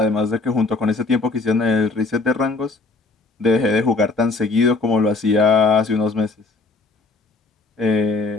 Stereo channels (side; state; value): right; quieter; 3.5 dB